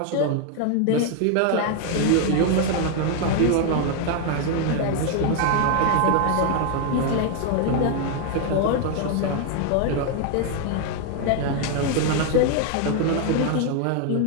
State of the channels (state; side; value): different; both; correlation 0.01